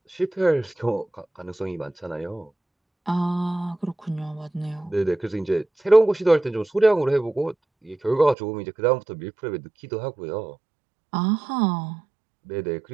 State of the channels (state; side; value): drops out; left; at 8.3 s